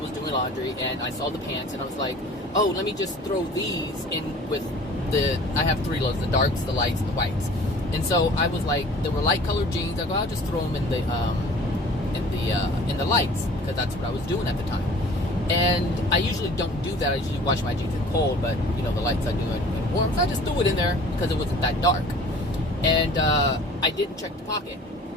doing laundry, and I saw the pants, and I was like, oh, let me just throw these in with I have 3 loads, the darks, the lights, and the whites. And so I was like, there were light colored jeans. I go, I'll just throw them in the lights, because that's what I was doing at the time. And I usually don't do that. I usually wash my jeans in cold, but the lights I do in warm. So I just threw it in there because it wasn't that dark. And I didn't check the pocket.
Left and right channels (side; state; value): both; normal; correlation 0.47